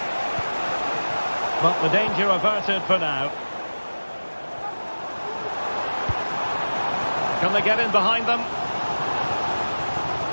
But the danger averted for now. Can they get in behind them?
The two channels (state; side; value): inverted; both; correlation -1.00